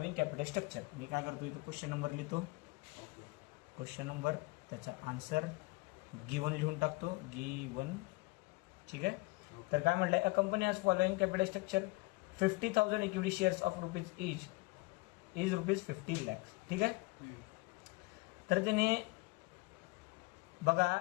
capital structure. मी काय करतो इथं क्वेश्चन नंबर लिहितो. क्वेश्चन नंबर, त्याचा आन्सर गिवन लिहून टाकतो. गिवन. ठीक आहे. तर काय म्हटलंय? A company has following capital structure. 50,000 equity shares of rupees each is ₹50 lakhs. ठीक आहे. तर त्याने बघा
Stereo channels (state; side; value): quieter; right; 24.0 dB